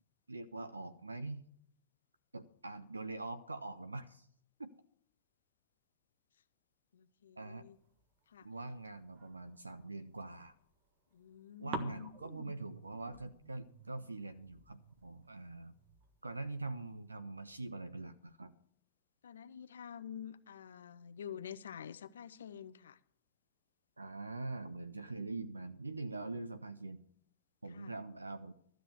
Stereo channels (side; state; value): both; inverted; correlation -0.79